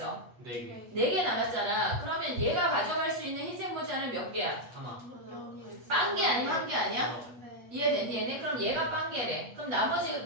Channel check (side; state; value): left; late; 8.5 ms